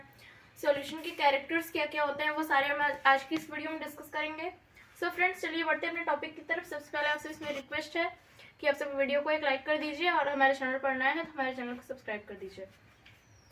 सॉल्यूशन के कैरेक्टर्स क्या क्या होते हैं, वो सारे हम आज की इस वीडियो में डिस्कस करेंगे। सो फ्रेंड्स, चलिए बढ़ते हैं अपने टॉपिक की तरफ। सबसे पहले आपसे इसमें रिक्वेस्ट है कि आप सब वीडियो को एक लाइक कर दीजिए और हमारे चैनल पर नए हैं तो हमारे चैनल को सब्सक्राइब कर दीजिए।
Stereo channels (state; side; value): identical; both; correlation 1.00